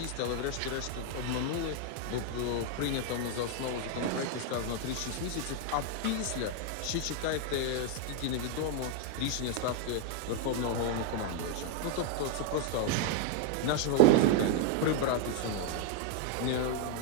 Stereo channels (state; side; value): different; both; correlation 0.00